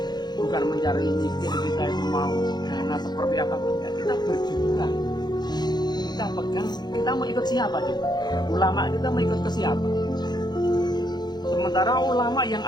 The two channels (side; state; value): right; late; 0.20 ms